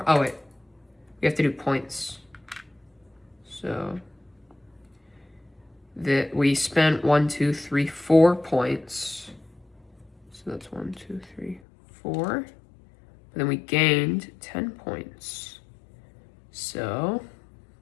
Oh wait, we have to do points. So that we spent 1, 2, 3, 4 points. So So that's 1, 2, 3, 4. But then we gained 10 points. So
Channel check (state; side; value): drops out; right; at 11.6 s